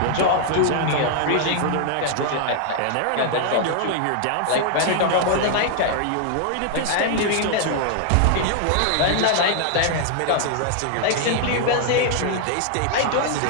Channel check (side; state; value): both; different; correlation 0.00